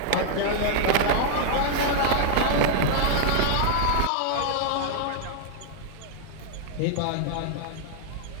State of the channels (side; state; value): both; different; correlation -0.01